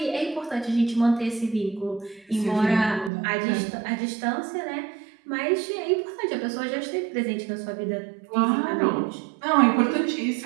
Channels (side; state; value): left; drops out; at 3.1 s